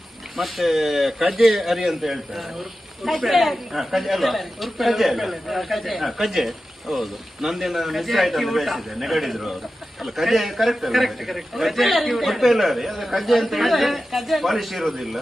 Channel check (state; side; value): normal; both; correlation 0.93